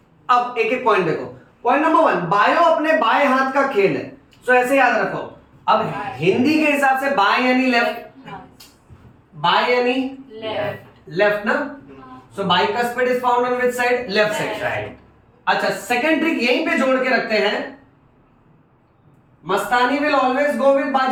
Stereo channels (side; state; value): both; identical; correlation 1.00